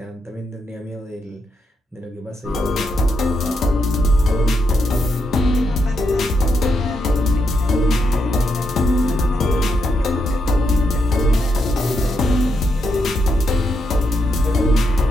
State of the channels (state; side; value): normal; both; correlation 0.81